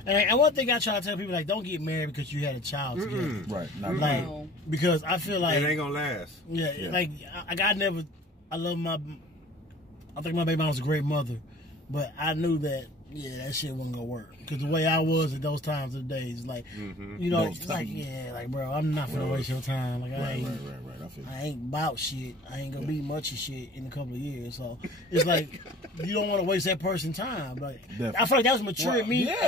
And one thing I try to tell people, like, don't get married because you had a child together. Right. Not like, because I feel like it ain't gonna last. Yeah. Like I love I think my baby mom was a great mother, but I knew that that shit wasn't gonna work because the way I was at those times of the days, like you know, it's like bro, I'm not gonna waste your time. Like I ain't about shit. I ain't gonna be much of shit in a couple of years. So it's like you don't want to waste that person's time. Like I feel like that was mature me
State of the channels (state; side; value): normal; both; correlation 0.47